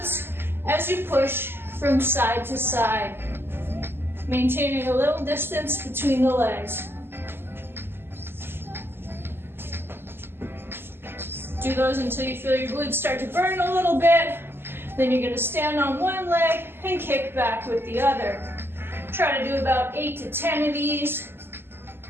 as you push from side to side, maintaining a little distance between the legs. Do those until you feel your glutes start to burn a little bit. Then you're going to stand on one leg and kick back with the other. Try to do about 8 to 10 of these.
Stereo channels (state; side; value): late; left; 0.11 ms